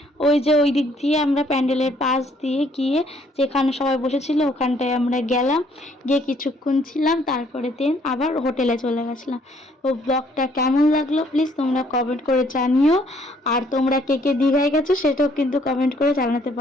ওই যে ওই দিক দিয়ে আমরা প্যান্ডেলের পাশ দিয়ে গিয়ে যেখানে সবাই বসেছিল ওখানটায় আমরা গেলাম, গিয়ে কিছুক্ষণ ছিলাম, তারপরে দেন আবার হোটেলে চলে গেছিলাম। তো ব্লগটা কেমন লাগলো প্লিজ তোমরা কমেন্ট করে জানিও। আর তোমরা কে কে দীঘায় গেছো সেটাও কিন্তু কমেন্ট করে জানাতে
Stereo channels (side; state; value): both; normal; correlation 0.64